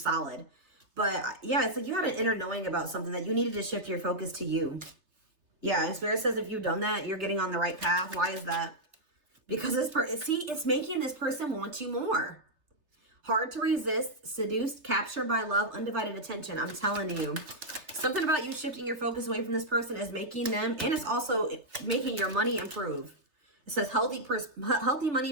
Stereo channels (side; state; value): left; late; 3.3 ms